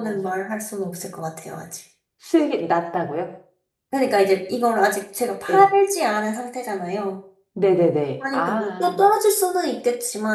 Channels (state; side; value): identical; both; correlation 1.00